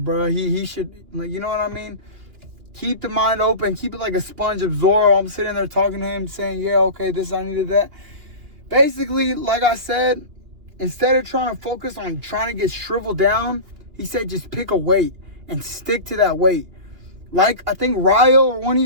He should, like, you know what I mean? Keep the mind open. Keep it like a sponge, absorb. I'm sitting there talking to him, saying, yeah, okay, this, I needed that. Basically, like I said, instead of trying to focus on trying to get shriveled down, he said just pick a weight and stick to that weight. Like, I think Ryo or one of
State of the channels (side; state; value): left; late; 2.9 ms